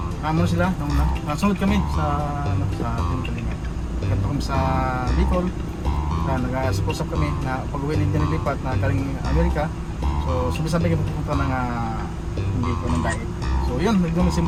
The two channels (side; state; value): both; identical; correlation 1.00